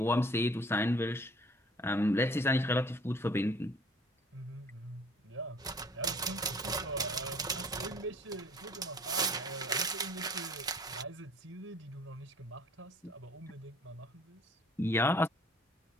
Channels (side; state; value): both; normal; correlation 0.52